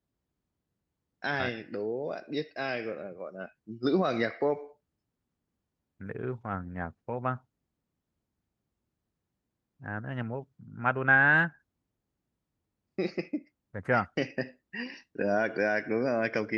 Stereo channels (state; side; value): identical; both; correlation 1.00